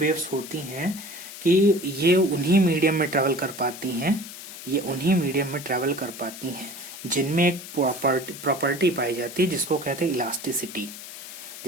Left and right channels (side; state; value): left; noise; hiss, 13 dB below the sound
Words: होती हैं कि ये उन्हीं मीडियम में ट्रेवल कर पाती हैं, ये उन्हीं मीडियम में ट्रेवल कर पाती हैं जिनमें एक प्रॉपर्टी पाई जाती है जिसको कहते हैं इलास्टिसिटी,